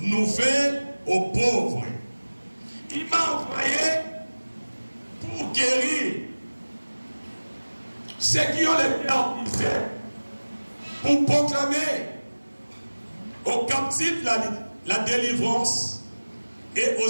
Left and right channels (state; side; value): inverted; both; correlation -1.00